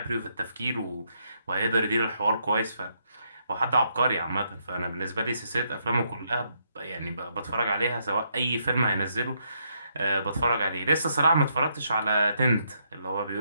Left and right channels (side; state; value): both; inverted; correlation -0.76